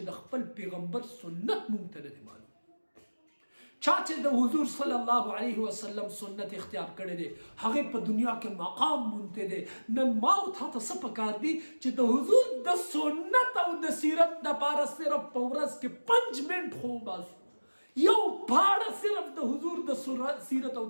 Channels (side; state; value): both; inverted; correlation -1.00